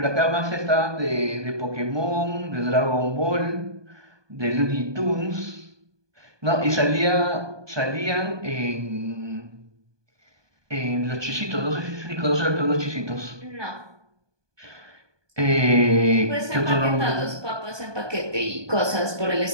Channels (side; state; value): left; late; 1.2 ms